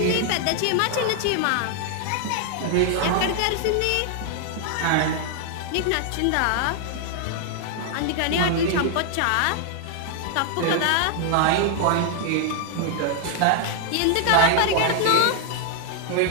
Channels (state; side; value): different; both; correlation 0.00